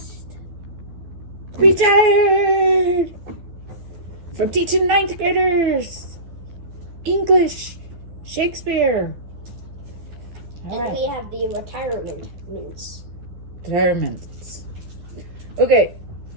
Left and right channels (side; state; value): left; late; 12 ms